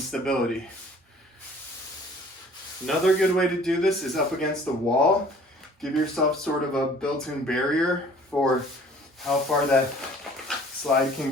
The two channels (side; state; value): both; normal; correlation 0.52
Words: Another good way to do this is up against the wall. Give yourself sort of a built-in barrier for how far that slide can